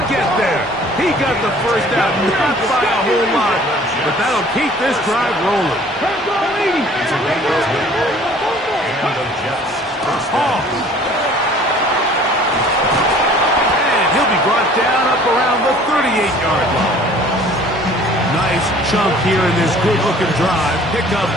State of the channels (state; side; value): normal; both; correlation 0.52